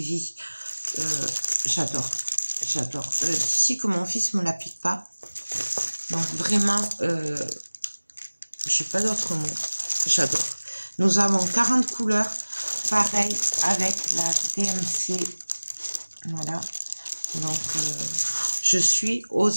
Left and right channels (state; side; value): inverted; both; correlation -1.00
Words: J'adore. J'adore. D'ici que mon fils me la pique pas. Donc vraiment, j'ai pas d'autre mot. J'adore. Nous avons 40 couleurs. Pareil avec la DMC. Voilà. Donc, je suis